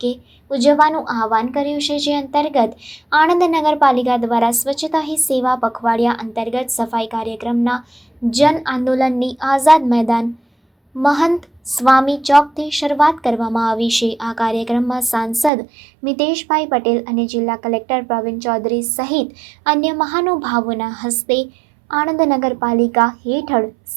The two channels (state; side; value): drops out; left; at 15.5 s